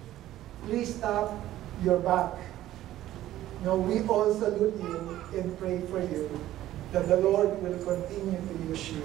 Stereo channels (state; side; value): quieter; left; 13.9 dB